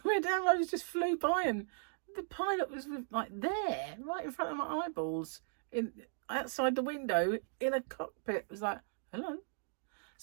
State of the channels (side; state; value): left; silent; digital silence